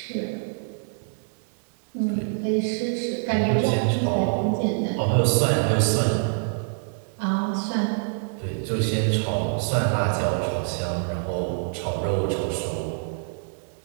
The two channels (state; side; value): silent; left; digital silence